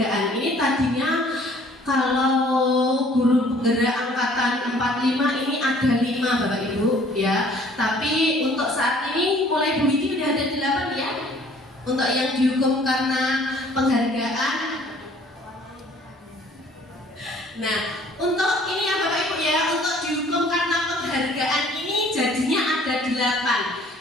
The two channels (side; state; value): both; normal; correlation 0.56